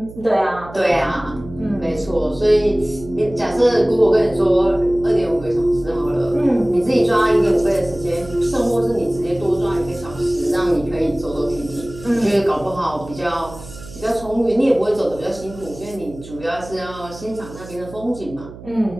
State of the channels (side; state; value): right; noise; hum, 16 dB below the sound